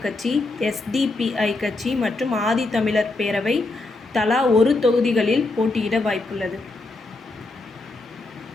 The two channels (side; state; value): right; quieter; 3.1 dB